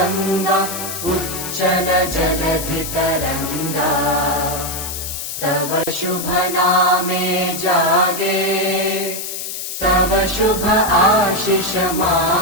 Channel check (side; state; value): left; noise; hiss, 6 dB below the sound